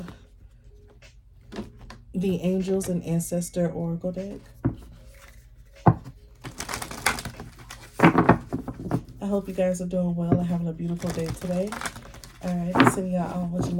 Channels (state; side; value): identical; both; correlation 1.00